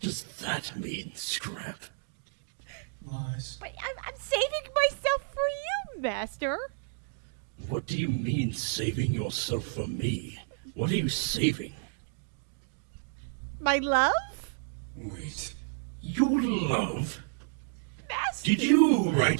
that mean, Scrap? Lies. But I'm saving myself for you, Master. What do you mean, saving yourself for me? What are you saving? My love? Wait. Your love? Master? Did you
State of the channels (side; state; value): left; silent; digital silence